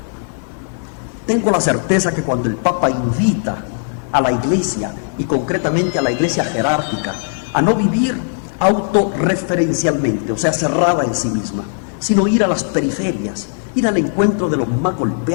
tengo la certeza que cuando el Papa invita a la Iglesia, y concretamente a la Iglesia jerárquica, a no vivir autorreferencialmente, o sea, cerrada en sí misma, sino ir a las periferias, ir al encuentro de los más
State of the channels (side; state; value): right; silent; digital silence